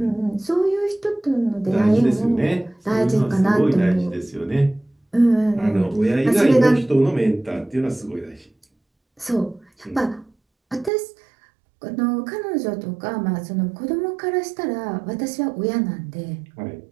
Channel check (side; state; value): left; drops out; at 10.9 s